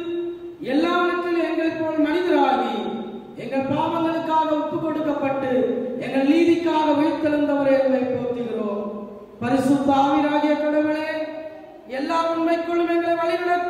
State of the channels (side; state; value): both; identical; correlation 1.00